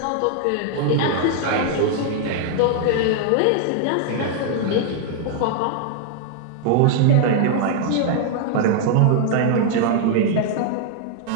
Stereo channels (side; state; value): both; different; correlation 0.00